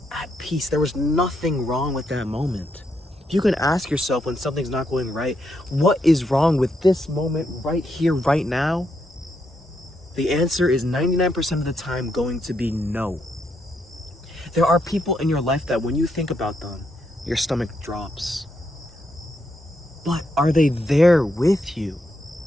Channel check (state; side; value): normal; both; correlation 0.79